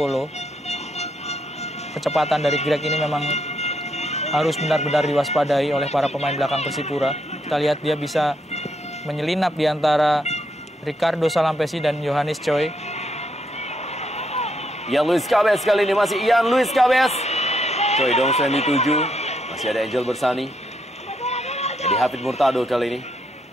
Kecepatan dari Greg ini memang harus benar-benar diwaspadai oleh para pemain belakang Persipura. Kita lihat dia bisa menyelinap di antara Ricardo Salampesi dan Yohanes Choi. Ian Luis Cabez kali ini, masih Ian Luis Cabez. Choi Dong-soo yang dituju. Masih ada Angel Bersani. Eddie Hafid Murtado kali ini.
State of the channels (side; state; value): both; normal; correlation 0.77